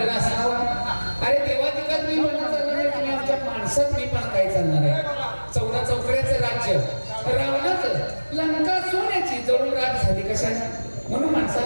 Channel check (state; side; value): inverted; both; correlation -1.00